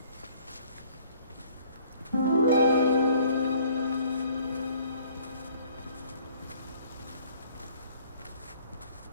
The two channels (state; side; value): inverted; both; correlation -0.57